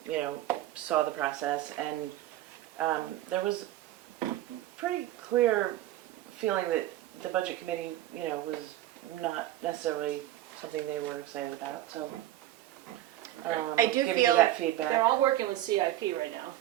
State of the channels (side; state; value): left; quieter; 14.2 dB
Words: saw the process. And there was pretty clear feeling that the budget committee, was not necessarily something they were excited about. So. I do giving feel- you that feedback. They're all working with CIP right now